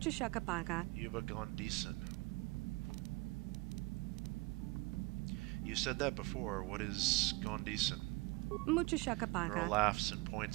shakapaka. Yuba Gondison. You said that before. What is Gondison? Mucho Girl shakapaka. laughs and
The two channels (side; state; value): left; quieter; 24.4 dB